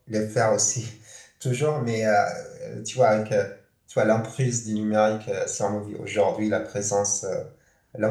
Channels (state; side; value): identical; both; correlation 1.00